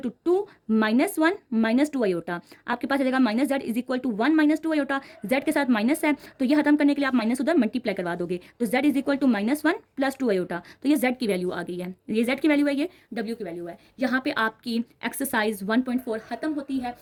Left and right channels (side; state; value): both; identical; correlation 1.00